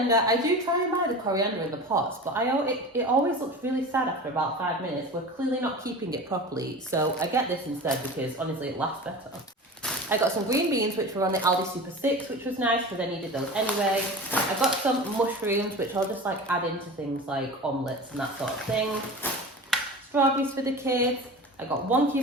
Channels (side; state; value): both; normal; correlation 0.33